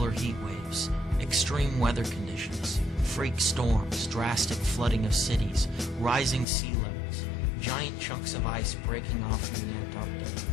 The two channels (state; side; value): drops out; right; at 6.5 s